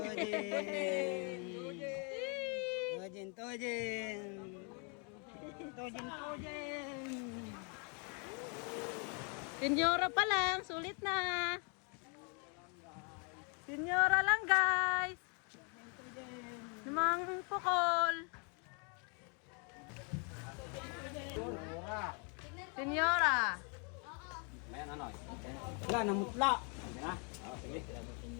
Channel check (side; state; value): right; quieter; 36.5 dB